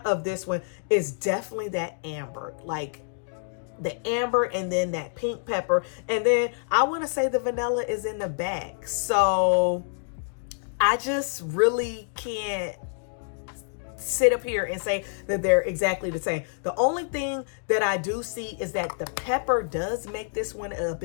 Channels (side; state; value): right; silent; digital silence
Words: of this one is definitely that amber, like the amber, and then that pink pepper, and then I want to say the vanilla is in the back. So I just really can't sit up here and say that they're exactly the same. The only thing that I do see is that the pepper does make this one a